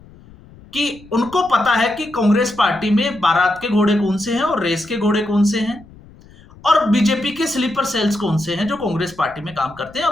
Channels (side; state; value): left; noise; rumble, 23 dB below the sound